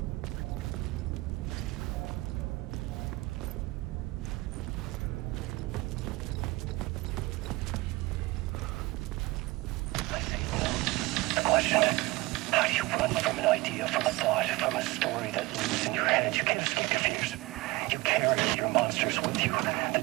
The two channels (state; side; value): quieter; left; 21.6 dB